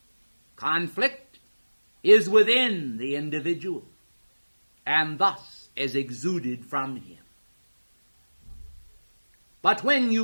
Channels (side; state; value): both; inverted; correlation -1.00